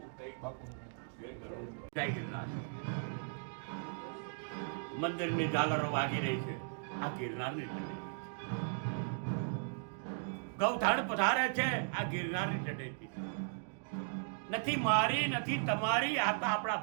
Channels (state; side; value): silent; left; digital silence